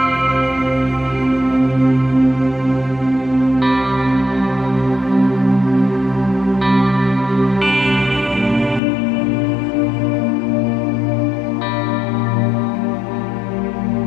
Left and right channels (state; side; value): drops out; right; at 8.8 s